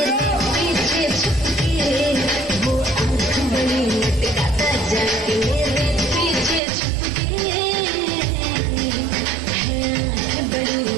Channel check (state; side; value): drops out; left; at 6.6 s